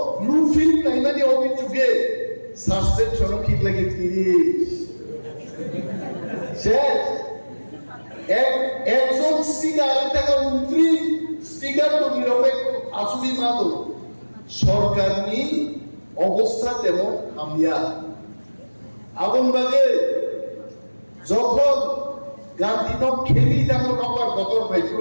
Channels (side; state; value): both; inverted; correlation -1.00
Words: ব্লু ফিল্ম নাই মানে অভিযোগে সাসপেনশন ঠিক লাগে 30 শেষ একজন স্পিকার টাকা 29 স্পিকার তো নিরপেক্ষ আসুবি মাতো সরকার নি অবস্থা তেমন হামিয়া আগুনবাগে যখন গান্ধী নক খেলি তেমন আমার গতর